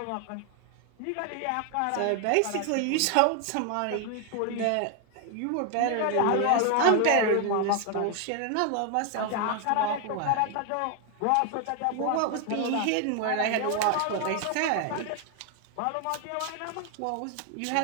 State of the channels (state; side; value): different; both; correlation 0.00